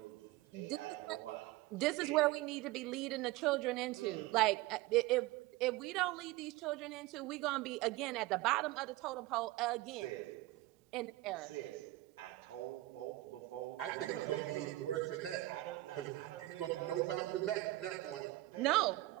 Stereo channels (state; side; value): quieter; left; 18.5 dB